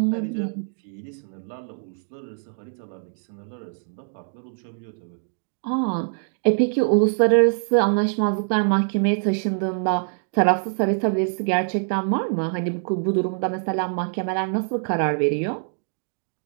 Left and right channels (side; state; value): left; silent; digital silence